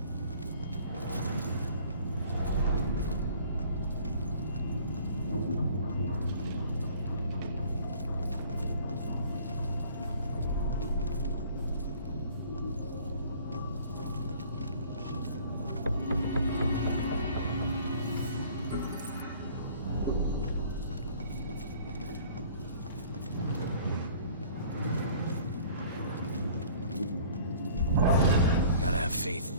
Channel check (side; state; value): both; inverted; correlation -0.51